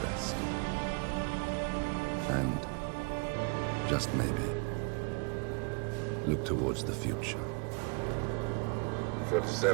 And, just maybe, look towards the future.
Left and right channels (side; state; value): left; quieter; 34.9 dB